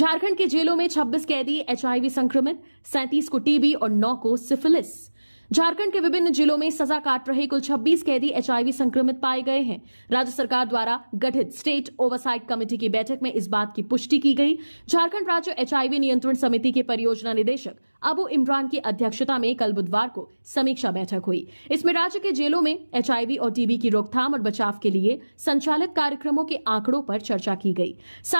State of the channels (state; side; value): inverted; both; correlation -1.00